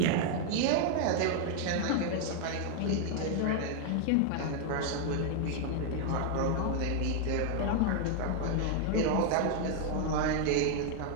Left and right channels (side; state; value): both; different; correlation 0.00